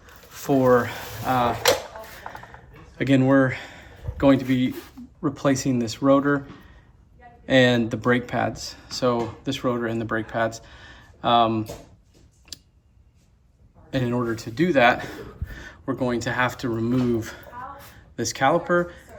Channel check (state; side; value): identical; both; correlation 1.00